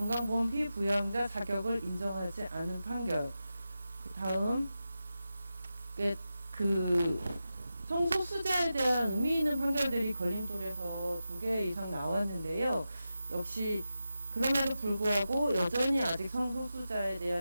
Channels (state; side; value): inverted; both; correlation -0.92